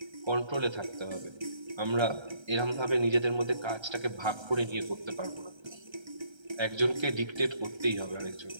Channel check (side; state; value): left; late; 1.3 ms